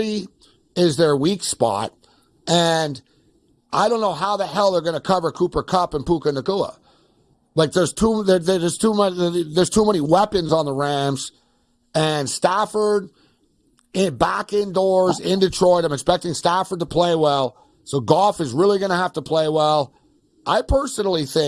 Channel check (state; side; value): identical; both; correlation 1.00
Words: is their weak spot, and I don't know how the hell they're going to cover Cooper Kupp and Puka Nacua. Like there's too many weapons on the Rams, and Stafford back indoors in Detroit. I'm expecting Stafford to play well, so Goff is really going to have to play well. I personally